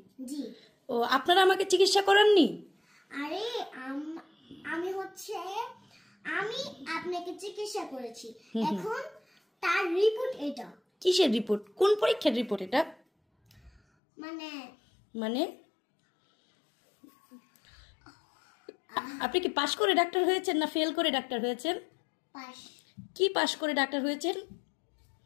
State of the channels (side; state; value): right; drops out; at 13.8 s